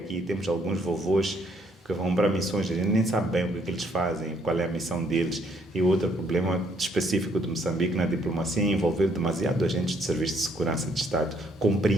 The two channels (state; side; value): normal; both; correlation 0.68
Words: Temos alguns vovôs que vão para missões, a gente nem sabe bem o que eles fazem, qual é a missão deles. E outro problema específico de Moçambique na diplomacia é envolver demasiado agentes de serviço de segurança de Estado.